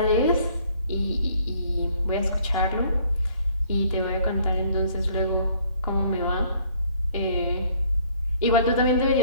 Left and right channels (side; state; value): both; inverted; correlation -0.60